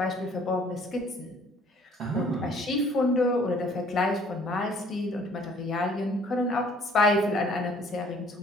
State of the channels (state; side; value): normal; both; correlation 0.57